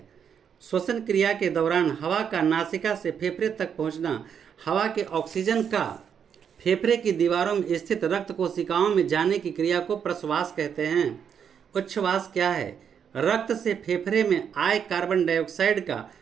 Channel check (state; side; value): quieter; left; 7.7 dB